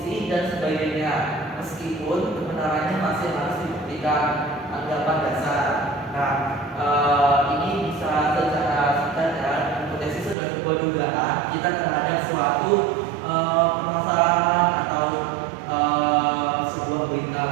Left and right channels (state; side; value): drops out; left; at 10.4 s